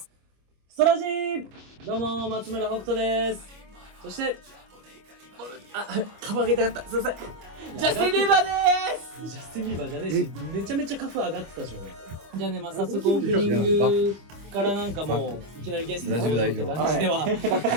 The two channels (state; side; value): late; left; 25 ms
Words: ストラジー。どうも松村北斗です。そしてカフ上げたかった。すいません。ジャスティン・ビーバーです。ジャスティン・ビーバーじゃねえし、めちゃめちゃカフ上がってたじゃん。じゃあね、まあ早速オープニングからなんかもういきなりゲストに来るって感じでは。